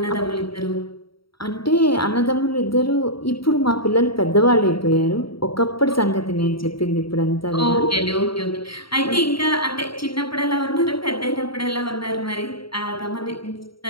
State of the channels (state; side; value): late; right; 0.74 ms